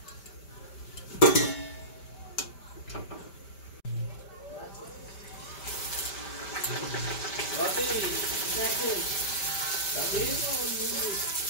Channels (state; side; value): late; right; 5.1 ms